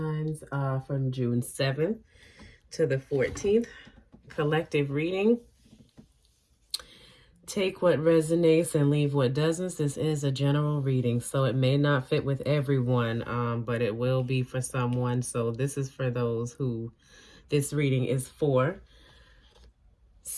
from June 7th to the 14th. Collective reading. Take what resonates and leave what doesn't. This is a general reading, so it may not fit with everyone, but it will be for someone. So this is for those who this reading is for.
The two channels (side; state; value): both; identical; correlation 1.00